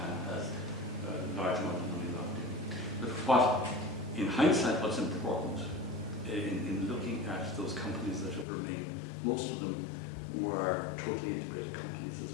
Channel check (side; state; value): right; drops out; at 8.5 s